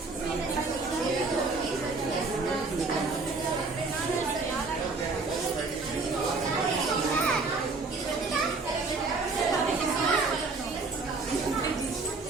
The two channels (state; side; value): quieter; left; 3.9 dB